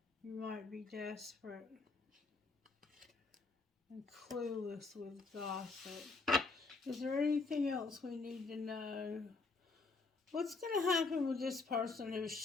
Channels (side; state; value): right; quieter; 3.9 dB